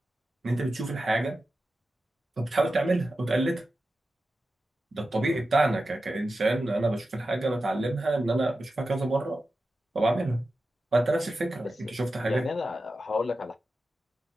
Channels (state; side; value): normal; both; correlation 0.92